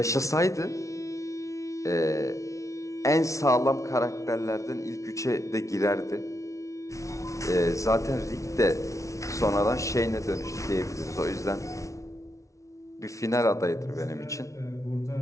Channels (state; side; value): late; right; 0.15 ms